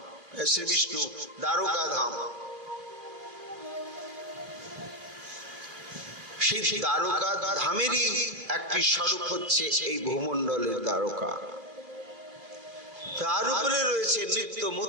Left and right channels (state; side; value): late; left; 2.6 ms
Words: শ্রী বিষ্ণু দ্বারকা ধাম। সেই দ্বারকা ধামেরই একটি স্বরূপ হচ্ছে এই ভূমণ্ডলের দ্বারকা। তার উপরে রয়েছে নিত্য